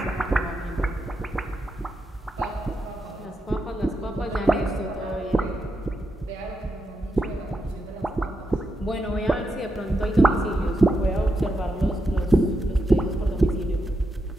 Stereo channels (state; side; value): normal; both; correlation 0.85